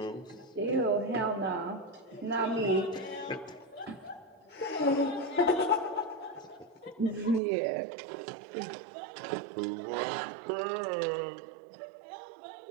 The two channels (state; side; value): drops out; left; at 7.4 s